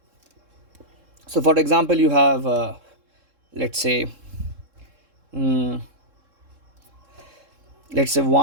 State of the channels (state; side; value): late; left; 3.7 ms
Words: So for example, you have let's say 1,